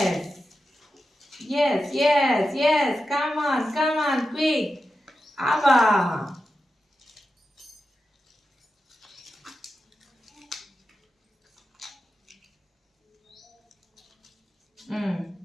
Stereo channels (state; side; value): normal; both; correlation 0.90